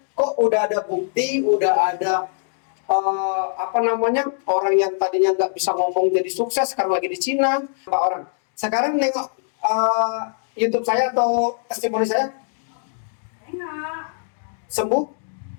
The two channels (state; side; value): silent; right; digital silence